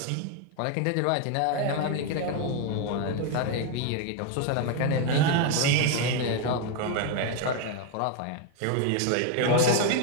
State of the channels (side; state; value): both; different; correlation 0.01